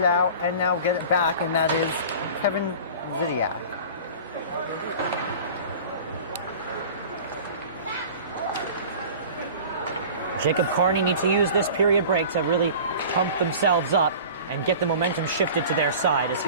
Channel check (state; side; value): inverted; both; correlation -0.40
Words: out and now get it back, and that is Kevin Zidiak. Jacob Kearny needs to use this period break to really pump themselves up and get the momentum shifted to their side, as